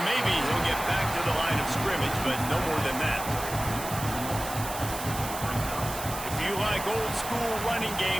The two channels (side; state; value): right; noise; hiss, 9 dB below the sound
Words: maybe he'll get back to the line of scrimmage, but no more than that. If you like old school running